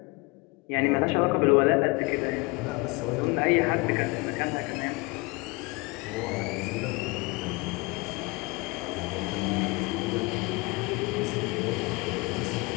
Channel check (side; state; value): right; quieter; 25.9 dB